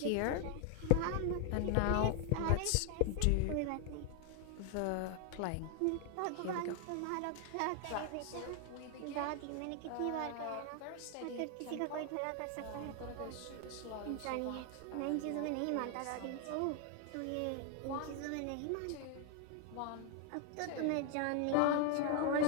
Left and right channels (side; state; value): both; different; correlation 0.01